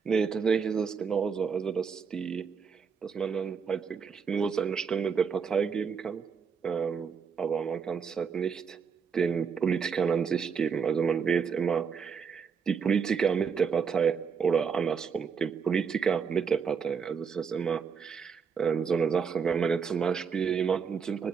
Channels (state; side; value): quieter; left; 6.2 dB